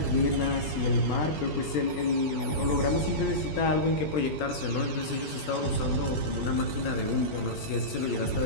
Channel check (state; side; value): late; right; 20 ms